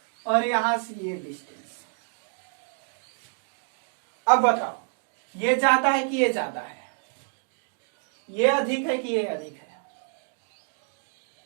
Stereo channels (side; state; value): left; silent; 59 dB below the other